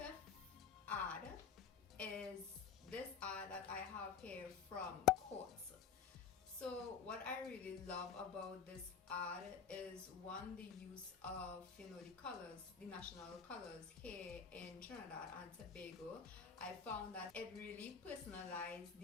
ad is this ad that I have here from Quartz. So what I really love about this ad is, one, the use of the colors, the national colors here in Trinidad and Tobago. I found that it really personalized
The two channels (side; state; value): right; quieter; 6.7 dB